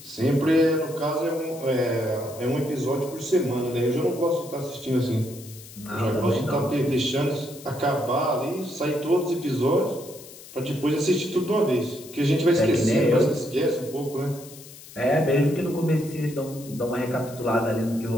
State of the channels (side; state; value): left; noise; hiss, 18 dB below the sound